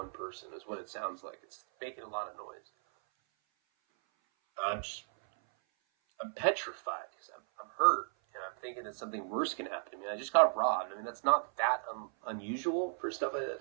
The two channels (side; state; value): left; silent; 54 dB below the other